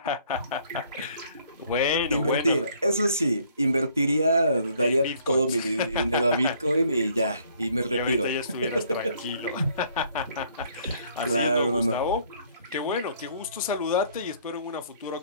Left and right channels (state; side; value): inverted; both; correlation -0.62